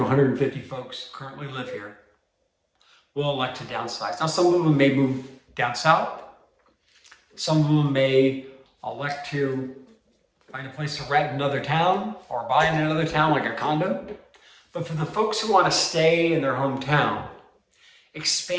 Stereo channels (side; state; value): both; identical; correlation 1.00